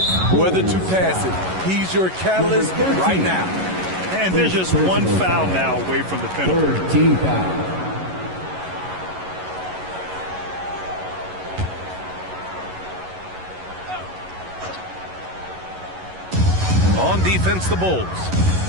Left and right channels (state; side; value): late; left; 11 ms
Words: whether to pass it. He's your catalyst right now. And there's just 1 foul now away from the penalty. 13 foul. On defense, the Bulls.